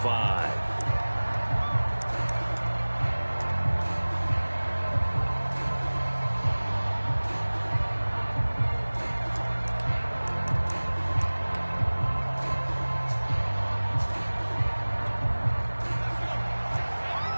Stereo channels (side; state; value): both; inverted; correlation -1.00